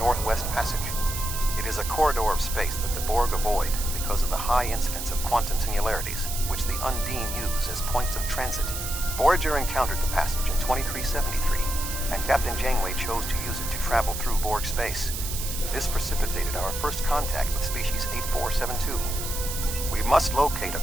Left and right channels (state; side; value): noise; right; hiss, 6 dB below the sound